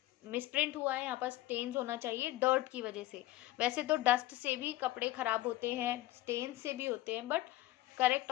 मिसप्रिंट हुआ है, यहाँ पर स्टेन्स होना चाहिए डर्ट की वजह से. वैसे तो डस्ट से भी कपड़े खराब होते हैं, स्टेन से भी होते हैं, but correct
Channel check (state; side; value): quieter; right; 16.5 dB